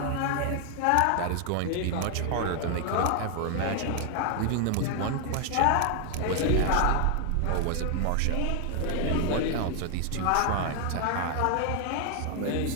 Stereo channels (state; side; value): different; both; correlation 0.00